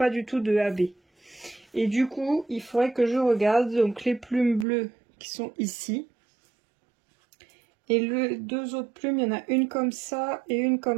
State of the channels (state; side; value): drops out; left; at 4.7 s